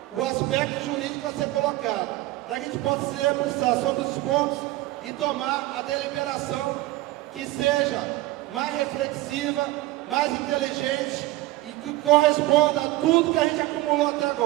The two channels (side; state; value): left; quieter; 18.0 dB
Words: o aspecto jurídico a ser colocado, para que a gente possa se debruçar sobre os pontos e tomar a deliberação que seja mais reflexiva, mais inteligente e que corresponda a tudo que a gente acumulou até